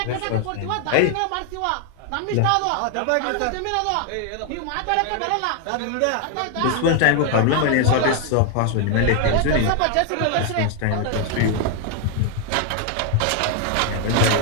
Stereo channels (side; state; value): both; different; correlation 0.00